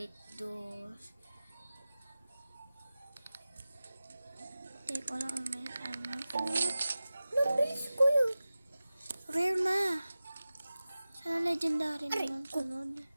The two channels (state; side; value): inverted; both; correlation -0.96